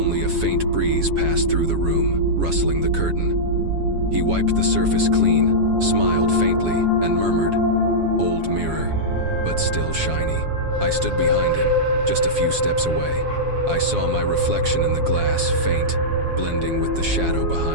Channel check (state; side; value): late; left; 7.2 ms